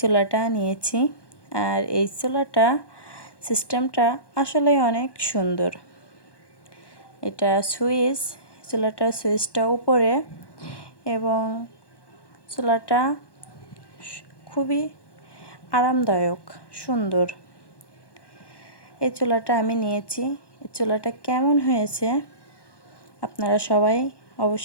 চুলাটা নিয়েছি, আর এই চুলাটা সিস্টেমটা আসলে অনেক সুন্দর। এটা চুলাটার সুইচটা উপরে, এবং চুলাটা খুবই আরামদায়ক, সুন্দর। এই চুলাটা আমি নিয়েছি। এই চুলাটা কেমন হয়েছে আপনারা সবাই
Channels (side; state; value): right; late; 1.1 ms